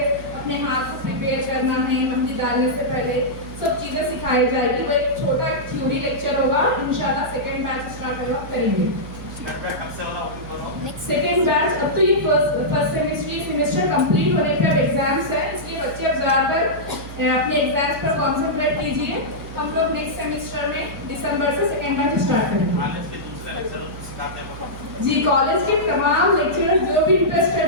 अपने हाथ को प्रिपेयर करना है मेहंदी डालने से पहले, सब चीज़ें सिखाई जाएगी। वो एक छोटा थ्योरी लेक्चर होगा। इंशाल्लाह सेकेंड बैच स्टार्ट होगा करेंगे। सेकेंड बैच अब तो ये फर्स्ट सेमेस्टर कंप्लीट होने के अब एग्जाम्स है, इसलिए बच्चे अब ज़्यादातर अपने एग्जाम्स पर कॉन्सेंट्रेट कीजिए। हम लोग नेक्स्ट सेमेस्टर में दिसंबर से सेकेंड बैच स्टार्ट करेंगे। जी, कॉलेज के तमाम लेक्चरर जो भी इंटरेस्टेड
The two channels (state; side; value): noise; right; hum, 13 dB below the sound